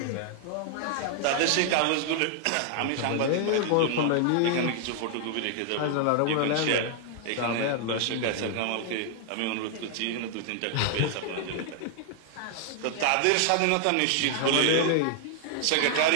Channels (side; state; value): both; different; correlation 0.00